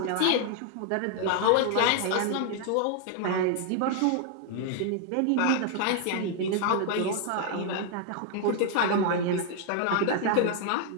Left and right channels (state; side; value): different; both; correlation 0.00